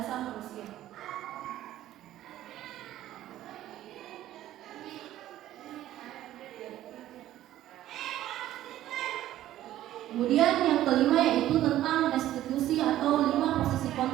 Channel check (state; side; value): quieter; left; 13.5 dB